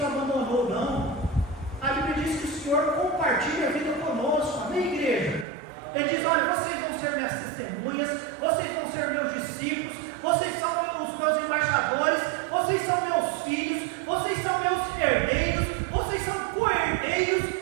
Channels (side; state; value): left; drops out; at 5.5 s